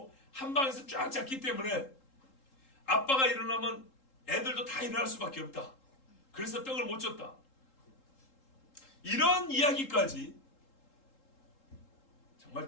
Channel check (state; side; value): late; right; 3.8 ms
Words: 한 방에서 쫙 잤기 때문에 아빠가 일어나면 애들도 다 일어날 수밖에 없다. 그래서 떡을 못 줬다. 이런 이야기까지